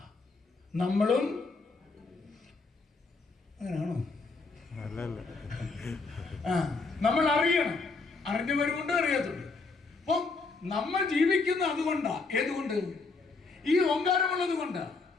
നമ്മളും അങ്ങനെയാണോ? നമ്മൾ അറിയണം. അറിഞ്ഞവരുമുണ്ട്, അറിയാത്തുണ്ട്. അപ്പം നമ്മൾ ജീവിക്കുന്ന അതുകൊണ്ടാ. ഏതുകൊണ്ട്? ഈ ഓങ്കാരമുള്ളത് കൊണ്ട്.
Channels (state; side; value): quieter; right; 4.0 dB